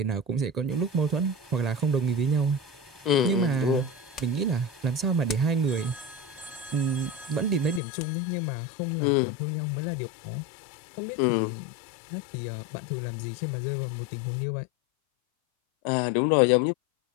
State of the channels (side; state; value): right; drops out; at 7.8 s